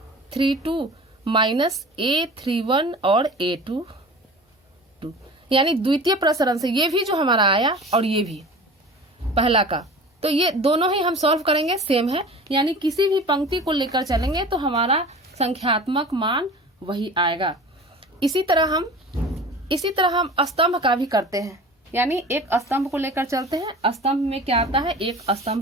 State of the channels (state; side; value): normal; both; correlation 0.39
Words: माइनस A31 और A22 यानी द्वितीय प्रसरण से ये भी जो हमारा आया और ये भी पहला का, तो ये दोनों ही हम सॉल्व करेंगे सेम है, यानी किसी भी पंक्ति को लेकर चलेंगे तो हमारा संख्यात्मक मान वही आएगा। इसी तरह हम स्तंभ का भी करते हैं, यानी एक स्तंभ को लेकर चलते हैं। स्तंभ में क्या आता है, एक